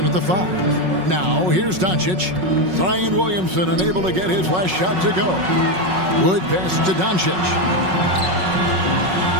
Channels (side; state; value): left; late; 5.4 ms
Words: at the 5. Now, here's Doncic. Zion Williamson unable to get his last shot to go. Wood pass to Doncic.